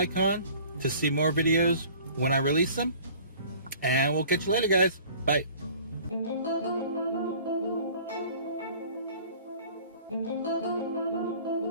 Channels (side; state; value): both; inverted; correlation -0.48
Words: to see more videos when I release them. And we'll catch you later guys. Bye.